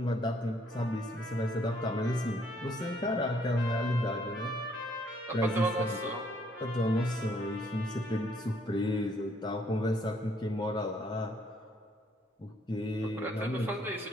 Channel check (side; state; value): both; normal; correlation 0.67